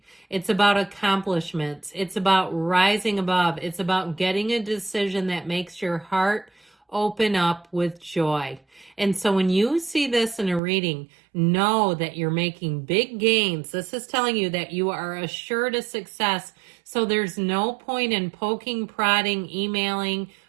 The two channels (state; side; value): drops out; left; at 10.6 s